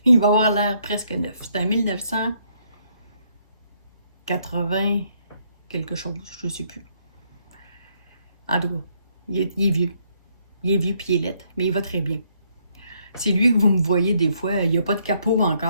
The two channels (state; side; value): inverted; both; correlation -0.71